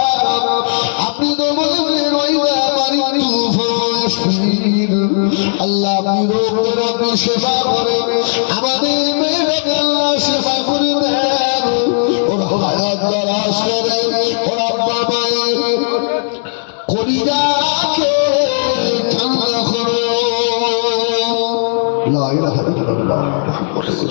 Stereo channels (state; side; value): silent; right; digital silence